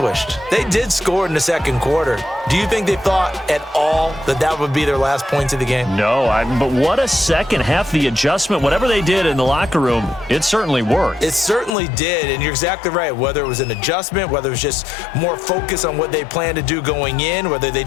They did score in the 2nd quarter. Do you think they thought at all that that would be their last points of the game? No, but what a 2nd half. The adjustment, whatever they did in the locker room, it certainly worked. It certainly did, and you're exactly right. Whether it was an adjustment, whether it was just more focus on what they planned to do going in, whether they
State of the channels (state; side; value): drops out; right; at 11.7 s